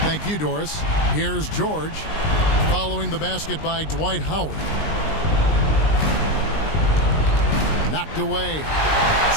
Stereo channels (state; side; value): late; right; 19 ms